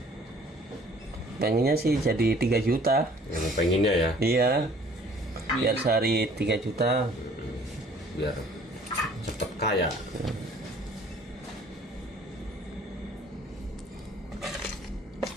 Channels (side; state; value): both; normal; correlation 0.54